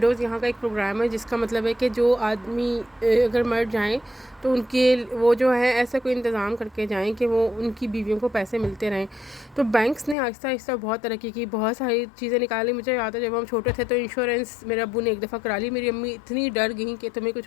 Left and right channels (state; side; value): drops out; right; at 10.2 s